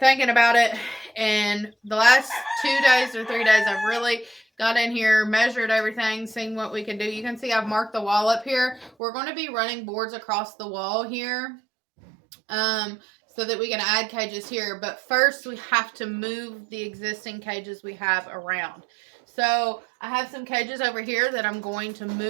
about it, and the last 2 days or 3 days I've really got in here, measured everything, seen what we can do. You can see I've marked the wall up here. We're going to be running boards across the wall here so that we can add cages here, but first we have to move the existing cages we have around. So I have some cages over here that I'm going to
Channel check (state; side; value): drops out; left; at 8.9 s